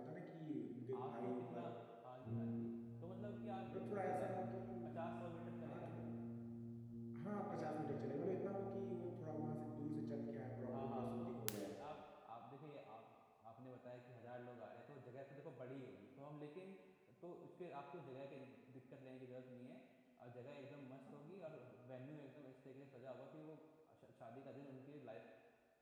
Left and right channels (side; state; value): both; identical; correlation 1.00